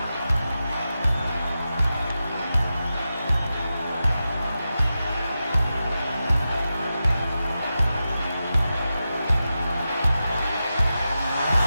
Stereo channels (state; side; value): inverted; both; correlation -0.91